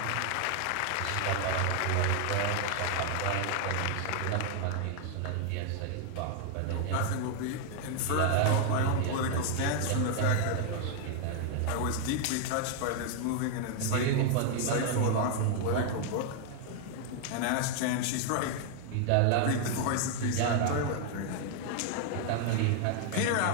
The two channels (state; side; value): different; both; correlation 0.00